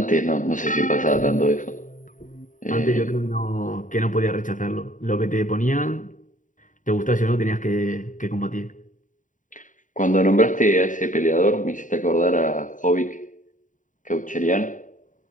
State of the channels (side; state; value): right; late; 0.37 ms